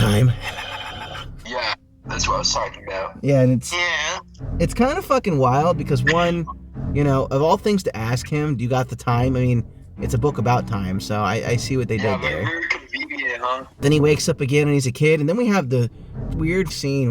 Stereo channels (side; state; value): both; identical; correlation 1.00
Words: Yeah, that's what I was talking about. Yeah, and Yeah. it's kind of fucking wild because one, you know, of all things to ask him, do you got the time? I mean, it's a book about time, so I see what they did there. Very convenient, huh? Then he wakes up again and he's a kid, and then we have the weird scene